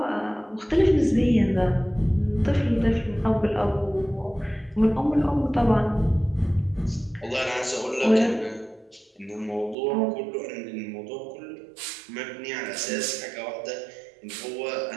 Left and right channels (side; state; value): left; drops out; at 9.8 s